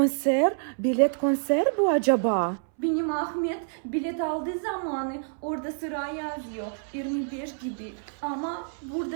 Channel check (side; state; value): left; silent; 60 dB below the other